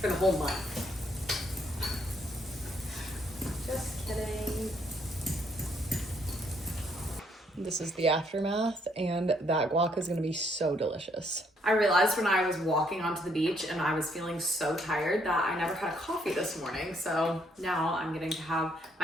for the whole month. Just kidding. This is the aftermath, and that guac is gonna be so delicious. I realized when I was walking onto the beach and I was feeling so tired that I never had a coffee this morning. So now I'm getting to have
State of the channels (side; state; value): both; normal; correlation 0.70